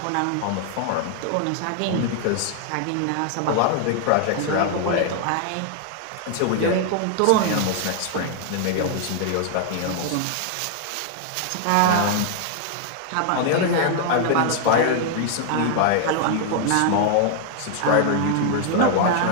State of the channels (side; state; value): both; different; correlation 0.00